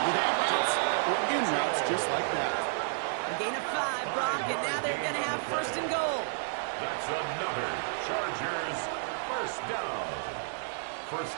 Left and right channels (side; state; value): left; silent; digital silence